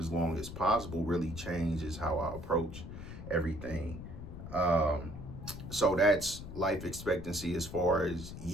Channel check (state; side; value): noise; left; rumble, 10 dB below the sound